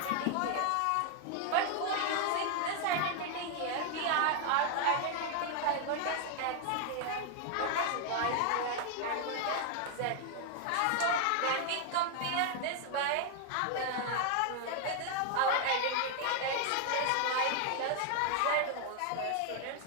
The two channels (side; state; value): both; different; correlation 0.00